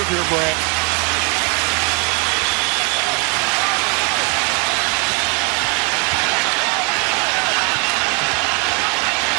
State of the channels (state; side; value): quieter; left; 33.0 dB